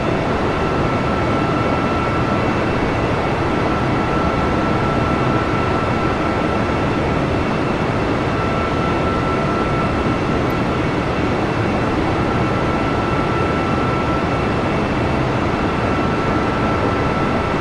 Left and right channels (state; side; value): identical; both; correlation 1.00